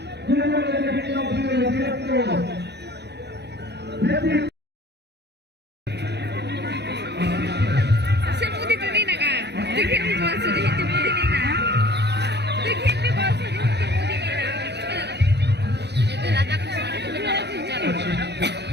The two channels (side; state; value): left; late; 0.49 ms